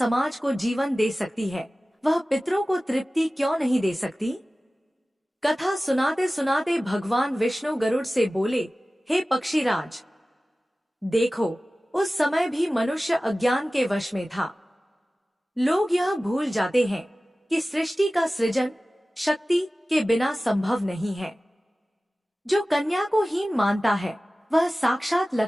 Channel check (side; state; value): both; normal; correlation 0.97